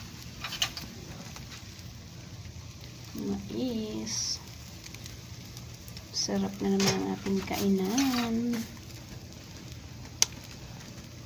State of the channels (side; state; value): both; identical; correlation 1.00